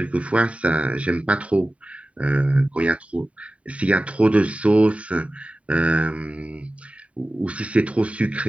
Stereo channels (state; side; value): late; left; 0.065 ms